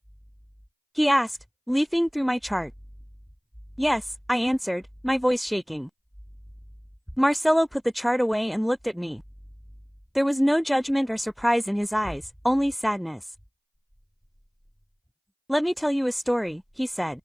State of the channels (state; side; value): identical; both; correlation 1.00